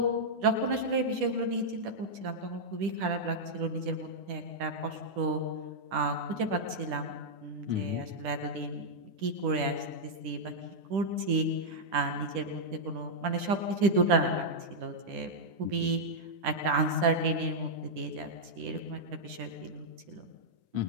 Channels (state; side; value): late; left; 10 ms